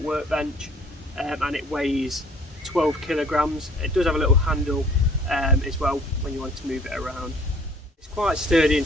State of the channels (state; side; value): normal; both; correlation 0.55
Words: and it weighs 12 kilograms. It does have a little handle as well when you want to move it around. It's quite sturdy